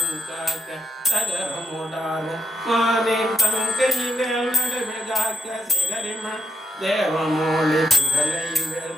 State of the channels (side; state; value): both; normal; correlation 0.77